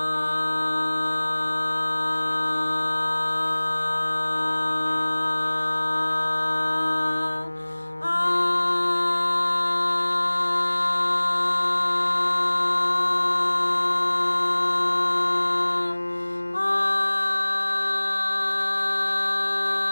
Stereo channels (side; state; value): both; inverted; correlation -1.00